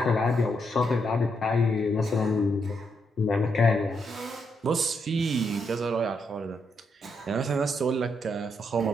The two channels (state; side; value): normal; both; correlation 0.79